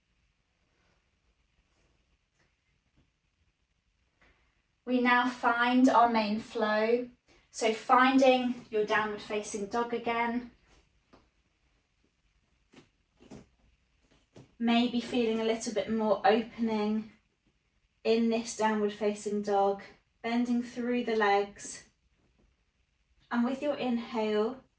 We now find our main flow. So finding your downward facing dog again. Maybe feeling a little bit more opening in this downward facing dog, bending through the legs. And with your inhale,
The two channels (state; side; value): identical; both; correlation 1.00